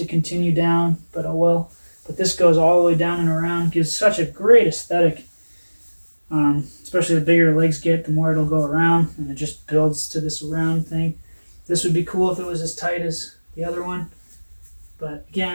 continue down, but oh well. But this goes all the way down and around, gives such a great aesthetic. Especially the bigger the legs get, the more it'll go around, and it just builds to this round thing. This would be cool if it was as tight as the other one, but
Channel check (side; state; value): both; inverted; correlation -1.00